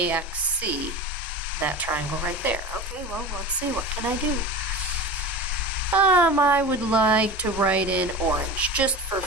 that triangle right there. Okay, well, let's see. What can I do? I would like to write in orange, just for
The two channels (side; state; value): both; normal; correlation 0.31